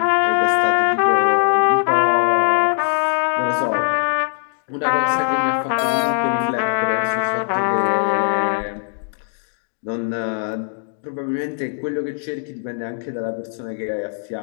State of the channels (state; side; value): silent; right; digital silence